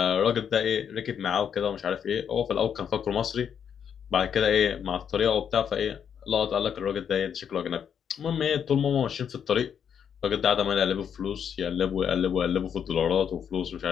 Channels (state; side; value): quieter; right; 8.0 dB